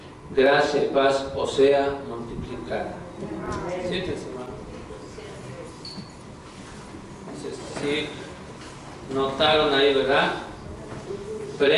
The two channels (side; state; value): both; identical; correlation 1.00